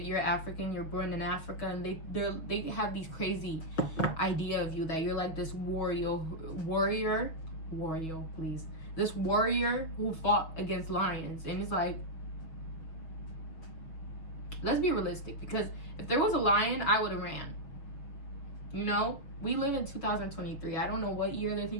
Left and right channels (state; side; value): late; right; 6.3 ms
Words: African, you're born in Africa, and they have these crazy idea of you that you're like this warrior, please. This warrior who fought against lions. And it's like, let's be realistic, because if there was a lion, I would have ran. You know, we live in 2023. I don't know what year they